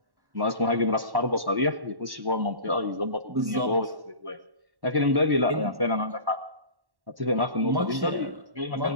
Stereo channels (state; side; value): late; left; 1.1 ms